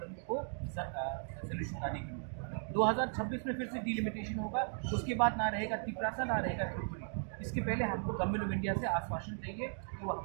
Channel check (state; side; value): silent; left; 53 dB below the other